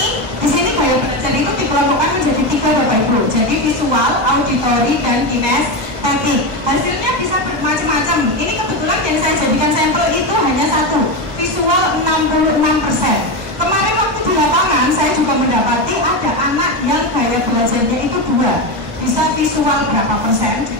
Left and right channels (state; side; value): late; left; 1.2 ms